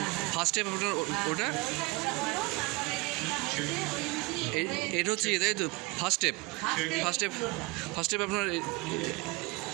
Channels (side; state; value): left; quieter; 24.0 dB